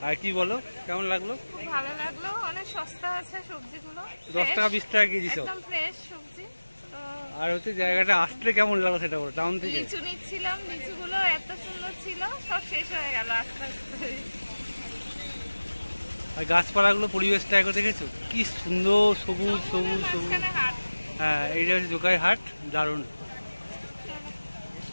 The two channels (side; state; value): both; inverted; correlation -1.00